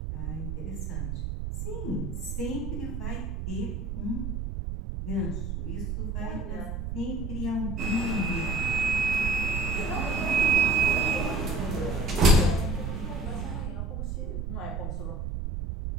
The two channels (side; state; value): right; noise; rumble, 4 dB below the sound